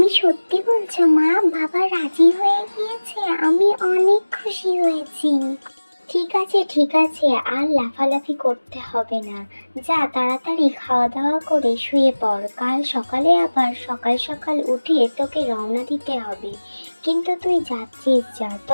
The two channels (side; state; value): both; inverted; correlation -1.00